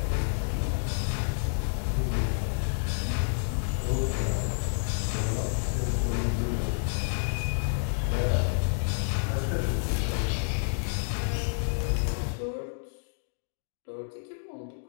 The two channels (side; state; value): right; silent; digital silence